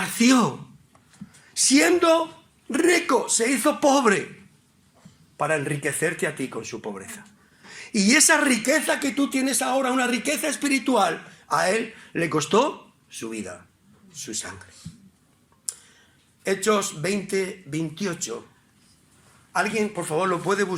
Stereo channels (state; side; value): identical; both; correlation 1.00